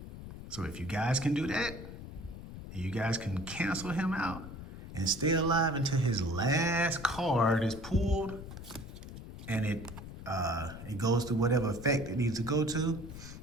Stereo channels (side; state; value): left; noise; rumble, 11 dB below the sound